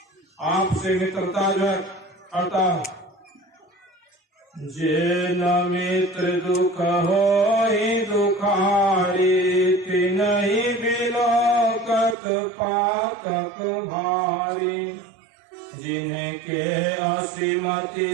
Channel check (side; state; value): left; drops out; at 12.2 s